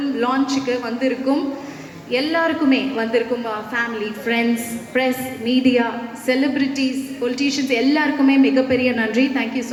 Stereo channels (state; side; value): identical; both; correlation 1.00